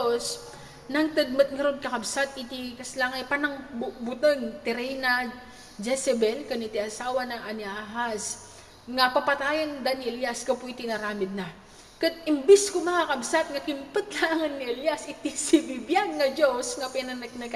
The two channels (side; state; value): both; identical; correlation 1.00